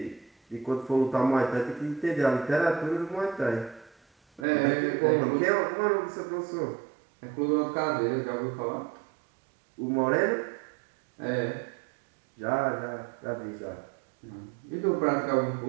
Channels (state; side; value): drops out; left; at 4.5 s